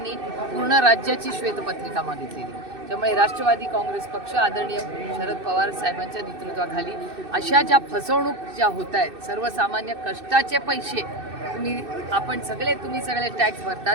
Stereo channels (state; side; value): late; left; 2.6 ms